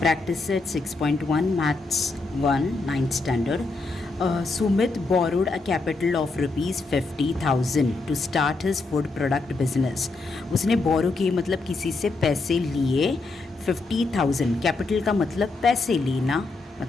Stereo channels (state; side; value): quieter; right; 3.5 dB